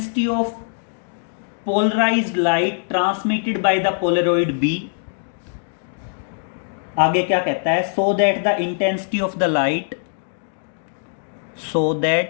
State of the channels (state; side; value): silent; right; digital silence